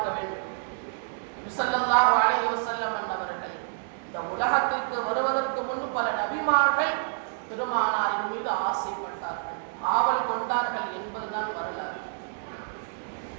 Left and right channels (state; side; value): silent; left; 59 dB below the other